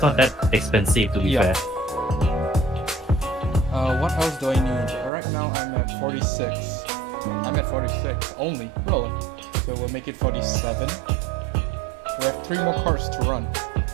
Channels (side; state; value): left; drops out; at 5.1 s